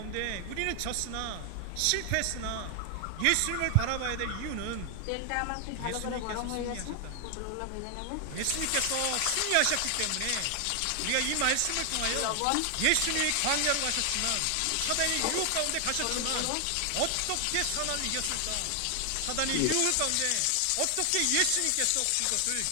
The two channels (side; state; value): both; different; correlation 0.00